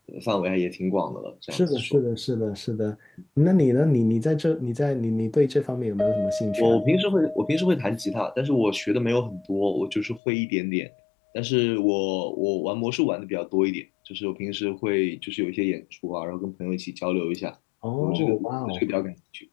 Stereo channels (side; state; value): right; drops out; at 10.2 s